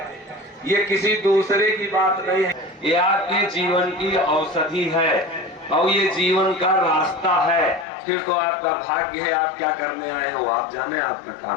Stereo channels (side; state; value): right; drops out; at 7.9 s